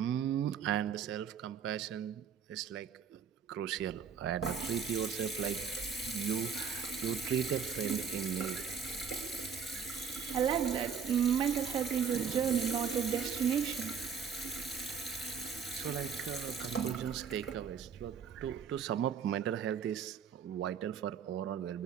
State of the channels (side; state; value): left; quieter; 7.0 dB